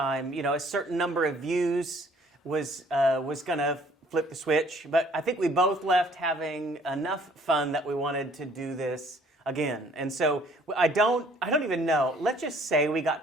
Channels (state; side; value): normal; both; correlation 0.58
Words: a certain number of views was gonna flip the switch, but I think we both left having enough fun that we wanted to do this again. And so I don't even know. Let's just say we got